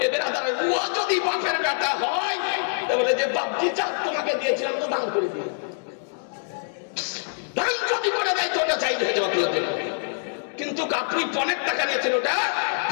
এবার ও যদি বাপের বেটা হয়, বলে যে বাপজি চাক তোমাকে দিয়েছিলাম তো দান করে দিয়ে, দান যদি করে দেয় তো ওটা চাই হয়ে যাওয়া তুলে দেন। কিন্তু আপনি পণের টাকা নিয়েছেন, ওটা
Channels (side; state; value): right; silent; digital silence